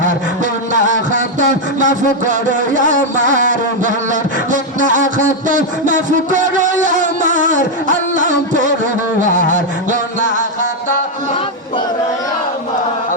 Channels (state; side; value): normal; both; correlation 0.02